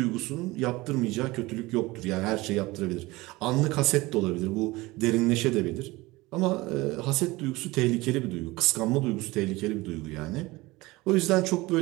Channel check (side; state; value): left; quieter; 21.1 dB